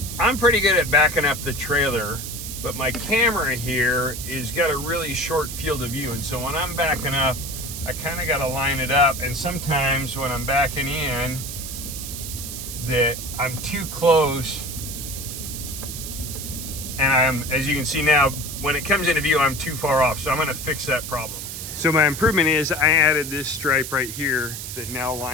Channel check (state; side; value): noise; right; hiss, 8 dB below the sound